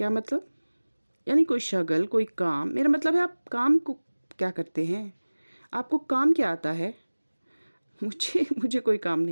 मतलब? यानी कोई शगल, कोई काम? मेरा मतलब है आप काम को क्या करते हैं? आपको काम क्या आता है? मुझे कोई काम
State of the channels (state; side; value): inverted; both; correlation -1.00